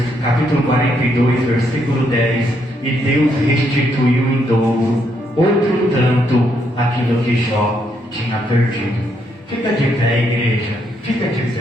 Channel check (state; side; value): normal; both; correlation 0.75